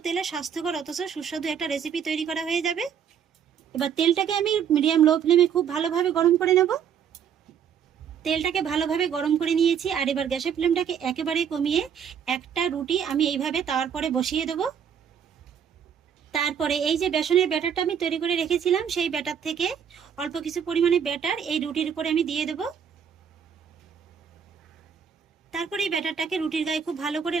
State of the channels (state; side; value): quieter; left; 7.9 dB